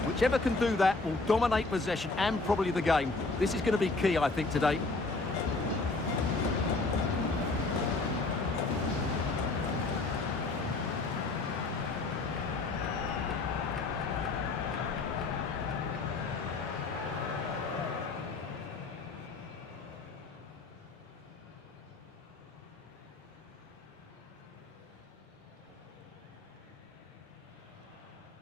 Whichever can do that will dominate possession and probably the game. This is going to be key, I think, today.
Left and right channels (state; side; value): quieter; right; 3.6 dB